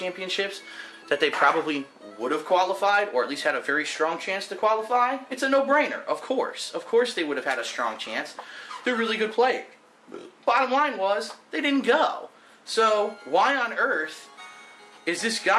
that they probably would have qualified, or at least had a very strong chance to qualify? It's a no-brainer, of course. Of course they would have had a strong chance. They're really good players. Bottom line was, they didn't go. So, why on earth is this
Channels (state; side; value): identical; both; correlation 1.00